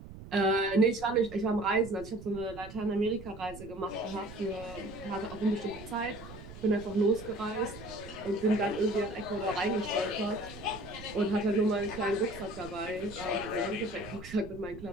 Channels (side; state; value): right; noise; rumble, 15 dB below the sound